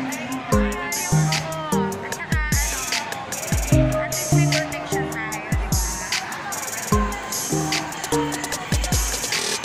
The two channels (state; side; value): identical; both; correlation 1.00